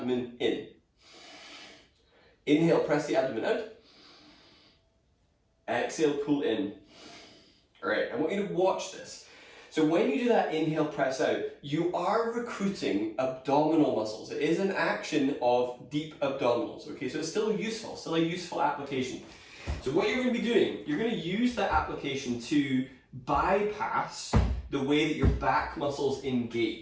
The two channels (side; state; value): both; identical; correlation 1.00